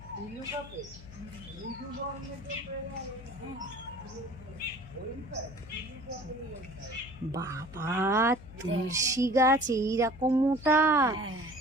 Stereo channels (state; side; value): noise; left; hum, 17 dB below the sound